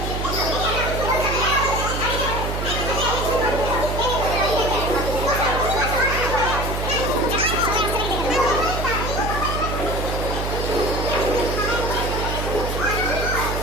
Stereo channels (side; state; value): right; noise; hum, 3 dB below the sound